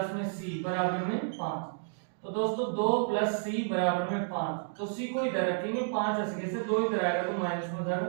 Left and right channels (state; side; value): silent; left; digital silence